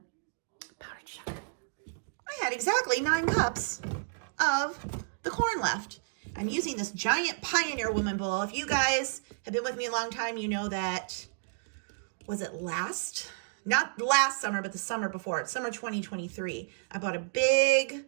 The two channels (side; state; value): left; silent; digital silence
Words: powdered sugar. I had exactly 9 cups of the corn left. I'm using this giant Pioneer Woman bowl. If you guys have been with me a long time, you know that, was it not last summer, but the summer before, it's summer 2023. I bought a big